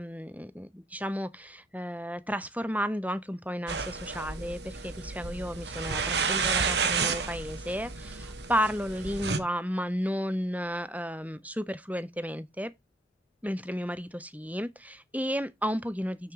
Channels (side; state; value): both; normal; correlation 0.60